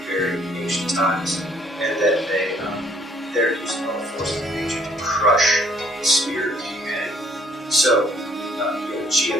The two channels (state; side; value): normal; both; correlation 0.63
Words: very ancient times, and that they're using all the forces of nature to crush the spirit of humanity. So,